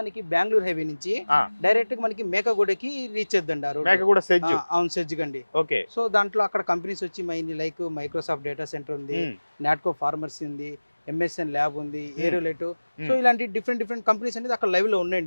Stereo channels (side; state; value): both; inverted; correlation -1.00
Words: బెంగళూరు హైవే నుంచి డైరెక్ట్ గా మనకి మేకగూడకి రీచ్ చేద్దండి ఆ రోడ్. అవును, సెజ్ గండి. సో దాంట్లో అక్కడ కంపెనీస్ వచ్చి లైక్ మైక్రోసాఫ్ట్ డేటా సెంటర్ ఉంది, నాట్కో ఫార్మర్సీ ఉంది, ఎంఎస్ఎన్ ల్యాబ్ ఉంది, ఏరోలెట్. సో ఇలాంటి డిఫరెంట్ కంపెనీస్ అనేది అక్కడ లైవ్ లో